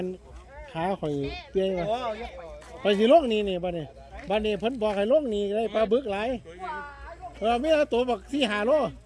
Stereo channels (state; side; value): identical; both; correlation 1.00